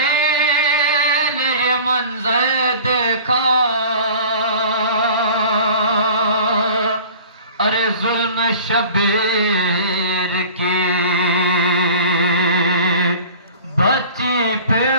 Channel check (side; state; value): both; inverted; correlation -0.43